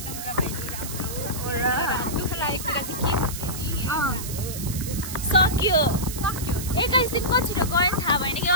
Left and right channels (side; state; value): right; noise; hiss, 8 dB below the sound